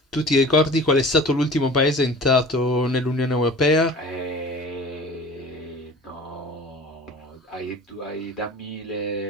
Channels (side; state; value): both; normal; correlation 0.41